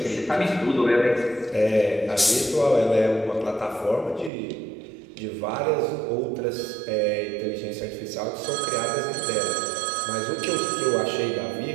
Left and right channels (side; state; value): left; drops out; at 4.3 s